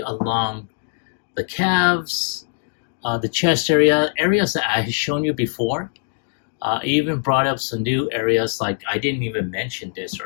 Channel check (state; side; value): silent; right; digital silence